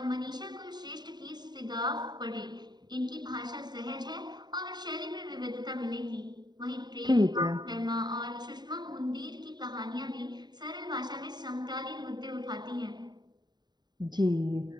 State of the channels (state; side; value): late; left; 0.20 ms